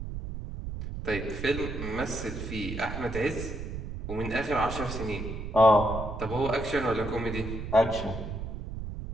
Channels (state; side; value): noise; right; rumble, 6 dB below the sound